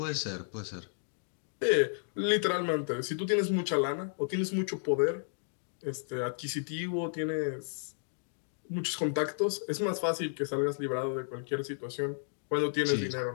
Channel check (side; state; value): right; silent; digital silence